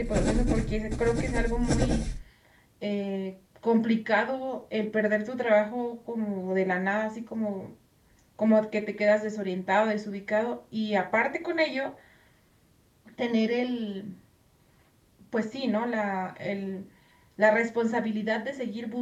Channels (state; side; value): identical; both; correlation 1.00